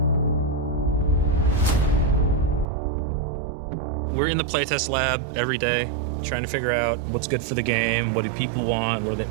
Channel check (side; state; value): left; drops out; at 2.7 s